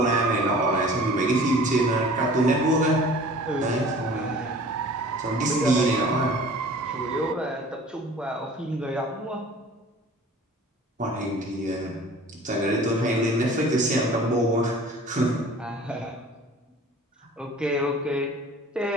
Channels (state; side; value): normal; both; correlation 0.46